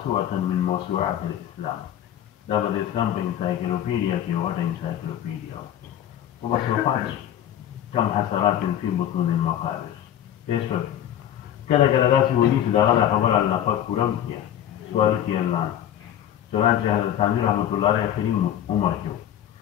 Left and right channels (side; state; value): right; quieter; 11.0 dB